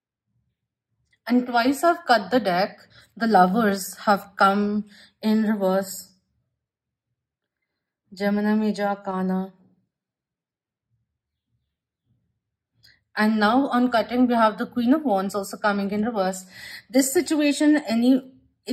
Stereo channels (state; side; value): identical; both; correlation 1.00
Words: And twice I've cut the deck. The lovers have come in reverse. Gemini Major Arcana. And now on cutting, we have the Queen of Wands also coming in reverse. This situation,